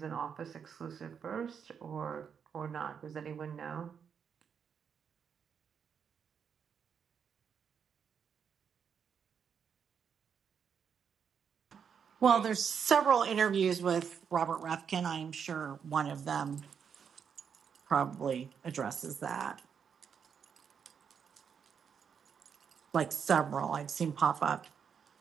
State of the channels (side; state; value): left; quieter; 7.1 dB